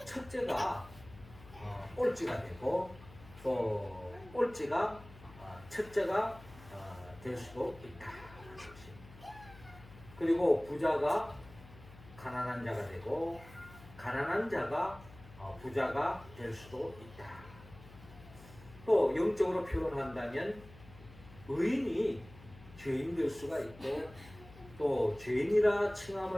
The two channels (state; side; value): noise; left; hum, 20 dB below the sound